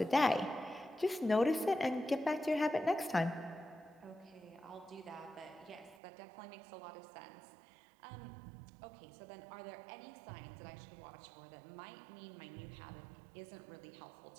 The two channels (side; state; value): left; drops out; at 6.0 s